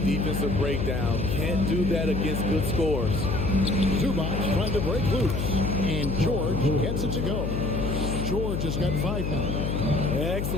breakdown. Can't do that against good scores. Zubac trying to break loose. And George gets it to go. George has got 5 now.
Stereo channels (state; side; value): noise; left; hum, 1 dB below the sound